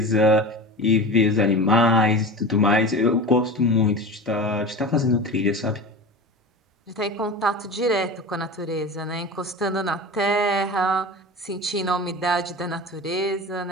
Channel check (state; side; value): normal; both; correlation 0.31